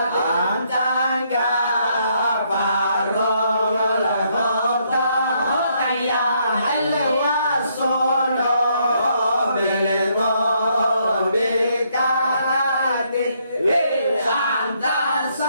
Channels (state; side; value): inverted; both; correlation -0.72